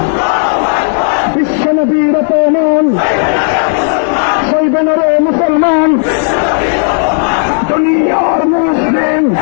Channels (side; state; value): right; silent; 74 dB below the other